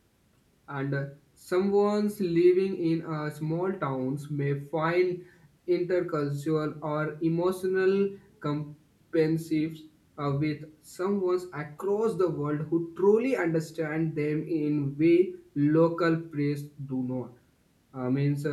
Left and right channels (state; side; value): identical; both; correlation 1.00